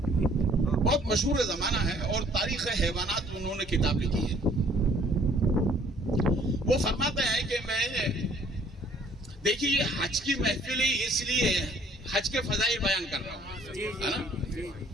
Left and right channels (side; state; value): both; normal; correlation 0.59